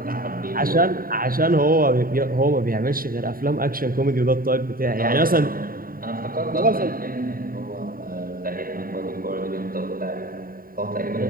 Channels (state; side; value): late; left; 0.42 ms